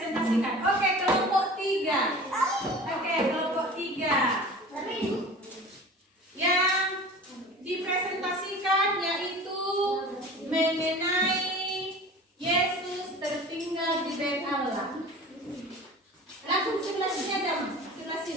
Oke, kelompok 3. Oke, kelompok 3. Yang dipresentasikan yaitu mengenai Yesus tertinggal di bait Allah. Langsung sebelah sini aja, sebelah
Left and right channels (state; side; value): normal; both; correlation 0.39